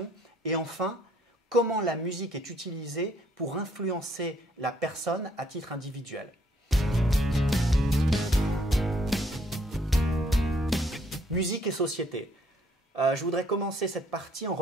Et enfin, comment la musique est utilisée pour influencer la personne à titre individuel. Musique et société. Je voudrais commencer cette partie en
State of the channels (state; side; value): normal; both; correlation 0.66